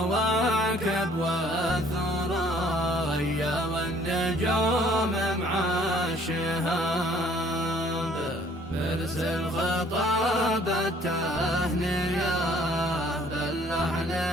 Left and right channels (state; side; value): normal; both; correlation 0.58